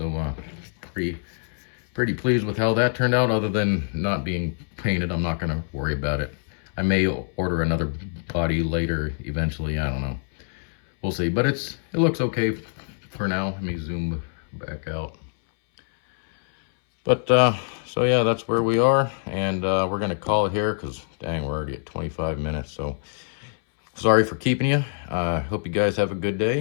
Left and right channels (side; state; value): right; silent; 62 dB below the other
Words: pretty pleased with how that turned out. Other than not being painted, I'm not going to worry about it. I may order another body later eventually, I don't know. We'll see, but it looks okay for now. Let me zoom back out. But so yeah, that's where we are, and we're gonna call it here because dang, we're already at 25 minutes. So sorry for keeping you. Hope you guys have a good